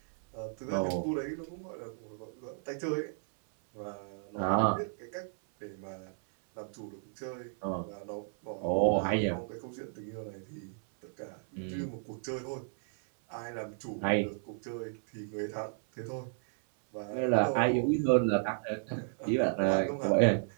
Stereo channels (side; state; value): left; silent; 55 dB below the other